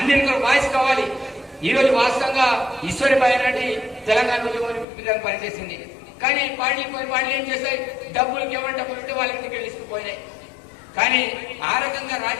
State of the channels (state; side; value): drops out; right; at 4.9 s